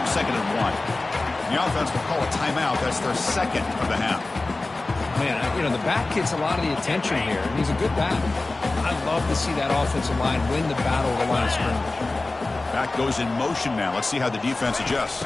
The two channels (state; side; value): quieter; right; 3.2 dB